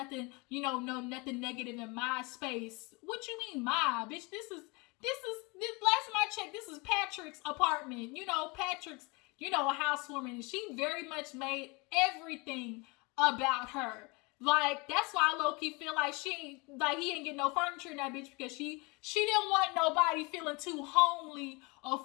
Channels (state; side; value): quieter; right; 27.6 dB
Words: nothing negative in my space. What you mean my? Bitch, this last time I checked, this is Patrick's apartment. Patrick's, a housewarming. And she very much made everything about her. Like, that's why I low-key feel like he ain't get no furniture in that bitch, because she didn't want nobody feeling too homely or